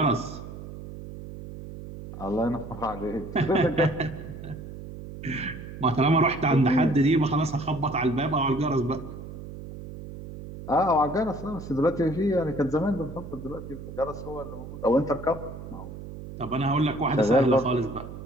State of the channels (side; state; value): right; noise; hum, 12 dB below the sound